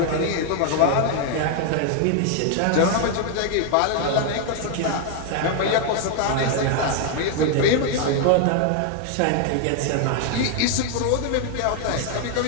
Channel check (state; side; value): different; both; correlation 0.00